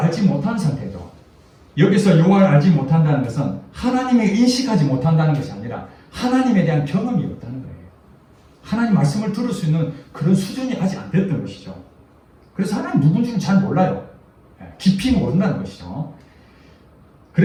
알지 못한 상태죠. 여기서 여호와를 알지 못한다는 것은 하나님을 인식하지 못한다는 것이 아니라 하나님에 대한 경험이 없다는 거예요. 하나님 말씀을 들을 수 있는 그런 수준이 아직 안 됐던 것이죠. 그래서 하나님 누군지는 잘 몰라요. 깊이 모른다는 것이죠.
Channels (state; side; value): identical; both; correlation 1.00